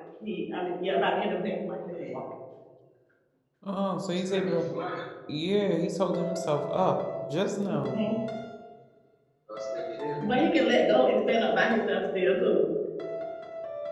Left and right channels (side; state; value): both; identical; correlation 1.00